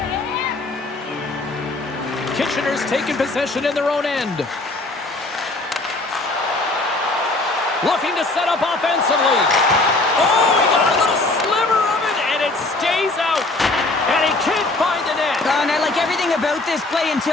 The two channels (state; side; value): quieter; right; 3.0 dB